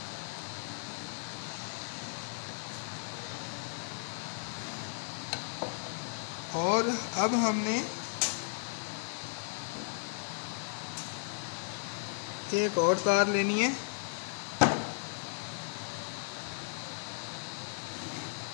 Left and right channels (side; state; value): right; silent; digital silence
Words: और अब हमने एक और तार लेनी है।